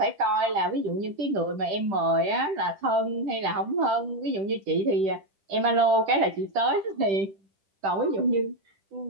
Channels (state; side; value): late; left; 10 ms